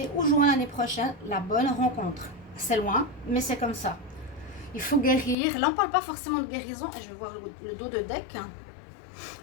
Ou juin l'année prochaine, la bonne rencontre. C'est loin, mais c'est comme ça. Il faut guérir. Là, on ne parle pas forcément de guérison. Et je vais voir le dos de deck.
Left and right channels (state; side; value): drops out; right; at 5.4 s